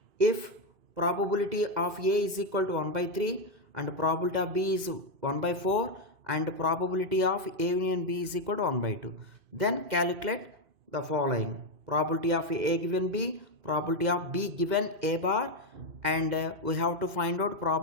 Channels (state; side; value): late; left; 2.5 ms